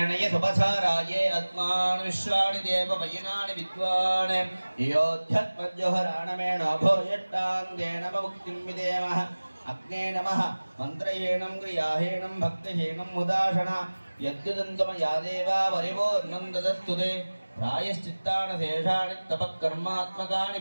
सुपथाराये अस्मान् विश्वाणि देव वयनानि विद्वान् योध्यत्मज्जोहराणमेण भोयट्टाङ्गेन मुक्तिं विदेमः अग्ने नमः मन्त्रहीनं क्रियाहीनं भक्तिहीनं मुदाशना यद्युदन्तमया देवा वरिवोर्नं ददस्तु ते प्रायश्चित्तानि शेषाणि तपःकर्मात्मकानि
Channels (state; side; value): inverted; both; correlation -1.00